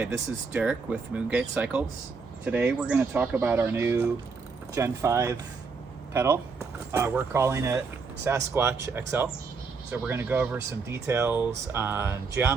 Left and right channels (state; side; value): quieter; left; 4.8 dB